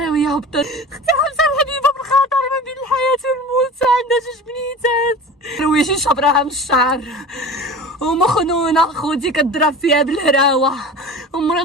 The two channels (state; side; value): normal; both; correlation 0.36